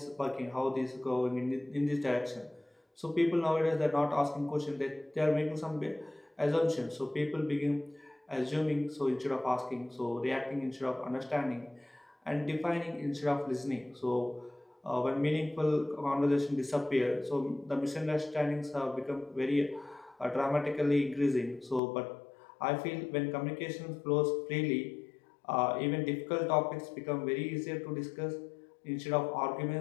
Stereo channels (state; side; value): drops out; right; at 21.8 s